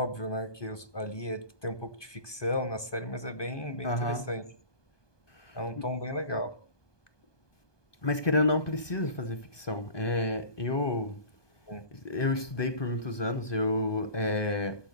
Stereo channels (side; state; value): right; late; 1.2 ms